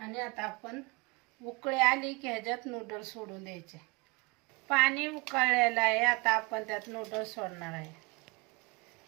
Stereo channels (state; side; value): quieter; left; 26.9 dB